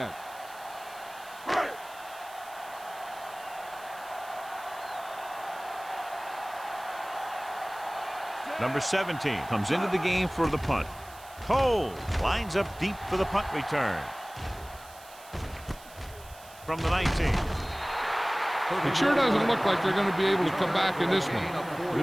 Number 17 comes into the game for the punt. Cole lines up deep for the punt return. From the 19. It sure doesn't look like they're going to be able to come back in this one. But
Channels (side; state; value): right; noise; hiss, 20 dB below the sound